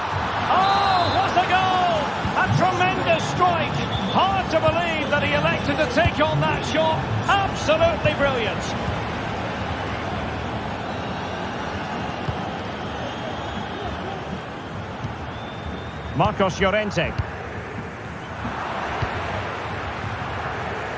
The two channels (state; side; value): identical; both; correlation 1.00